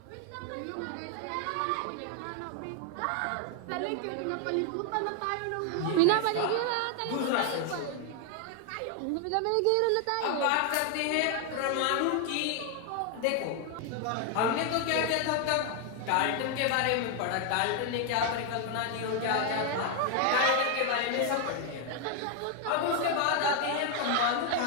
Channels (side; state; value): both; different; correlation 0.01